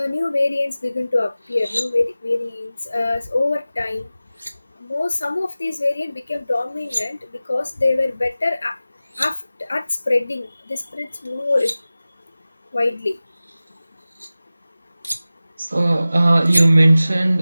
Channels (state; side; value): inverted; both; correlation -0.96